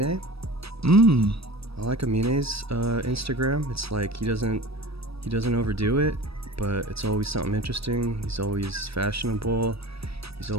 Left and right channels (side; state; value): left; late; 0.77 ms